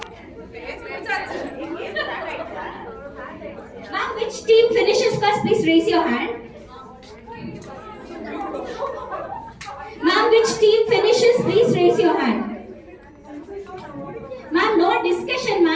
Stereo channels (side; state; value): both; identical; correlation 1.00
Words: Ma'am, which team finishes first? Please raise your hand. Ma'am, which team finishes? Please raise your hand. Ma'am, no discussion,